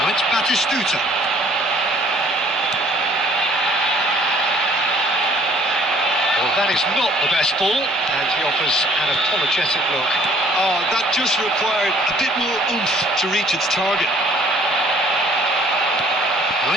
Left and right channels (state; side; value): normal; both; correlation 0.57